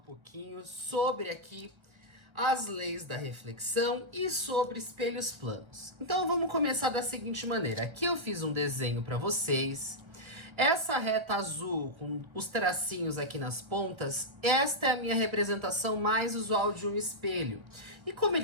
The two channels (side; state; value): left; late; 1.5 ms